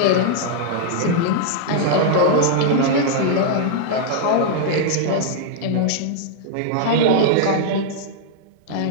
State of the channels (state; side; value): different; both; correlation -0.01